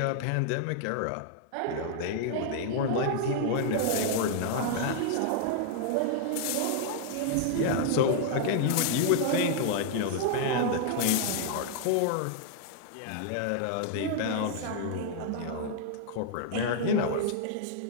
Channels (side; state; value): both; different; correlation -0.01